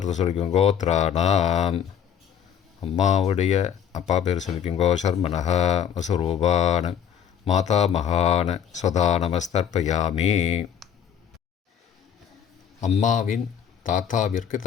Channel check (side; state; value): right; quieter; 8.5 dB